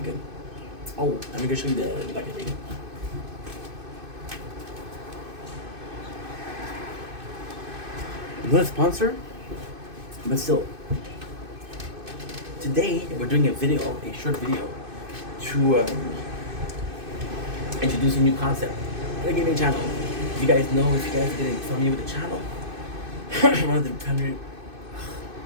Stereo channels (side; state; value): left; late; 2.6 ms